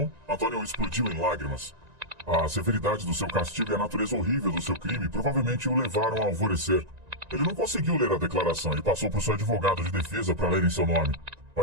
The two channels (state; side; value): late; left; 1.9 ms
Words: Antônio explodiu em lágrimas. A severidade do seu castigo e a natureza horrível do seu crime provavelmente o levaram a alvorecer. Ele não conseguiu ler a declaração e passou por seu advogado de defesa para ler em seu nome. O